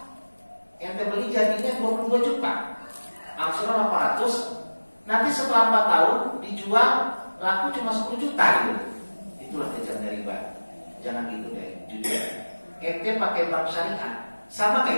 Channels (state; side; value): inverted; both; correlation -1.00